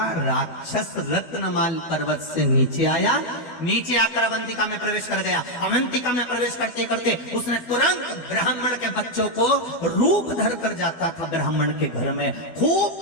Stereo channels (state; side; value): late; right; 12 ms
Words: राक्षस रत्नमाल पर्वत से नीचे आया। नीचे आकर अवंतिका में प्रवेश कर गया। अवंतिका में प्रवेश करते करते उसने तुरंत ब्राह्मण के बच्चों को रूप धर कर जाता था ब्राह्मण के घर में। खूब